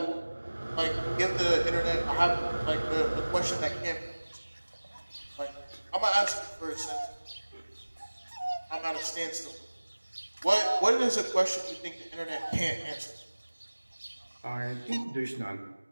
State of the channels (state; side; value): inverted; both; correlation -1.00